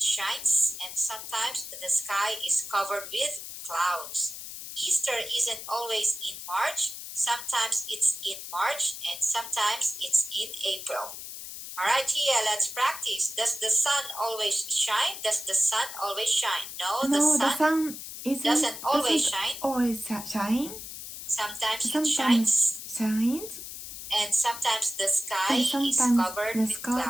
shines, and sometimes the sky is covered with clouds. Easter isn't always in March. Sometimes it's in March, and sometimes it's in April. All right, Tia, let's practice. Does the sun always shine? Does the sun always shine? No, the sun doesn't always shine. Sometimes it shines, and sometimes the sky is covered with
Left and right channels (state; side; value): noise; left; hiss, 10 dB below the sound